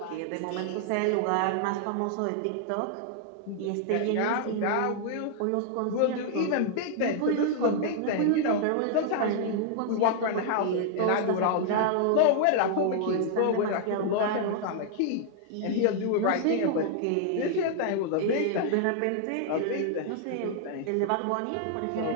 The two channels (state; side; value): different; both; correlation -0.01